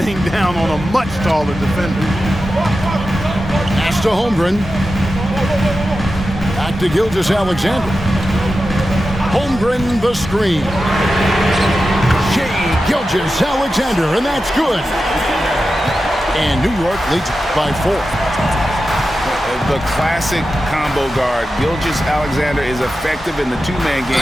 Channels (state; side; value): normal; both; correlation 0.92